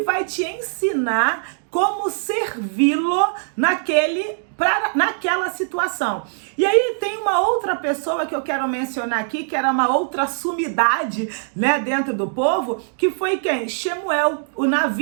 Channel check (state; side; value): silent; left; digital silence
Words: vai te ensinar como servi-lo naquela situação. E aí tem uma outra pessoa que eu quero mencionar aqui, que era uma outra sumidade, dentro do povo, que foi quem? Shemuel, o